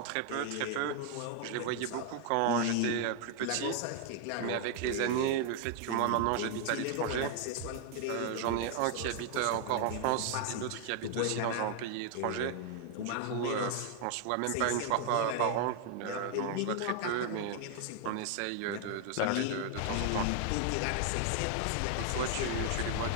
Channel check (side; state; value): both; different; correlation 0.00